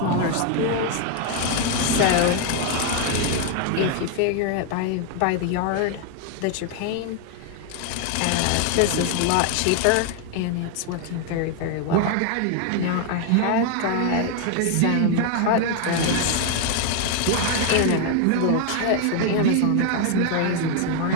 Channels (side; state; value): both; different; correlation 0.01